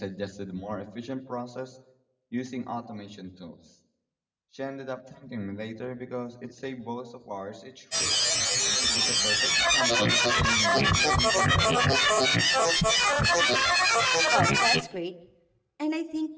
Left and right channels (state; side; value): identical; both; correlation 1.00